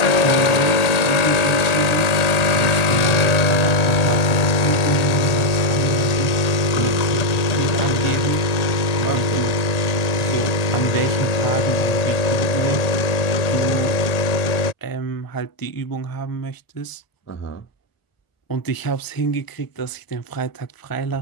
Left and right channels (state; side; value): late; right; 1.8 ms